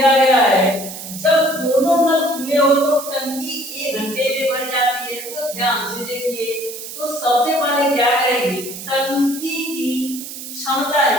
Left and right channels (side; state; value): right; noise; hiss, 10 dB below the sound